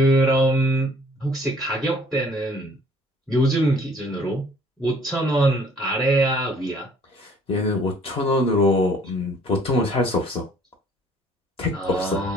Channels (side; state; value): both; normal; correlation 0.57